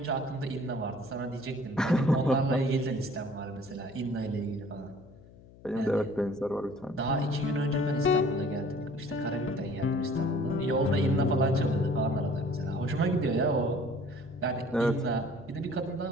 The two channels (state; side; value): noise; left; hum, 22 dB below the sound